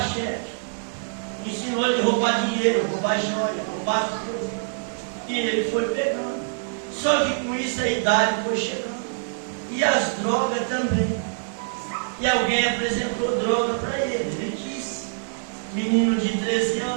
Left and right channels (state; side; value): silent; left; digital silence